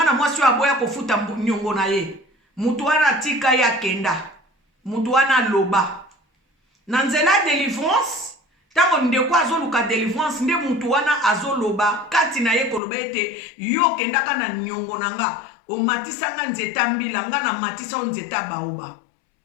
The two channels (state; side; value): drops out; right; at 12.8 s